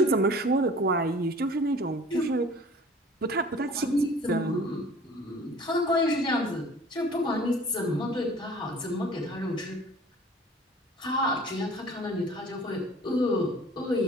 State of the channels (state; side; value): normal; both; correlation 0.47